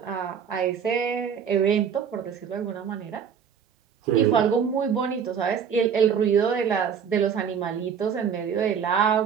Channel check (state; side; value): quieter; left; 7.3 dB